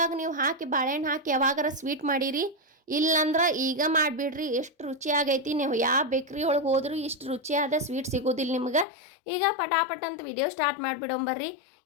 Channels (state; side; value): drops out; right; at 8.8 s